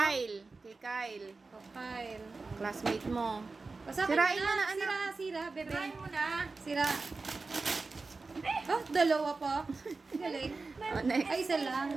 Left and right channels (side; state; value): left; quieter; 3.9 dB